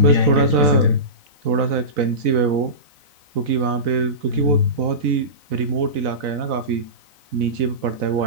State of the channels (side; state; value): left; late; 4.0 ms